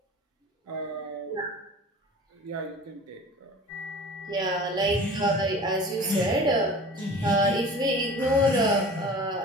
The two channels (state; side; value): normal; both; correlation 0.40